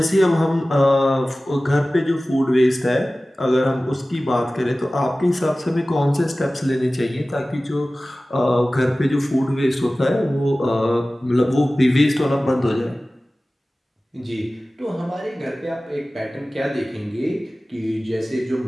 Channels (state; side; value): normal; both; correlation 0.97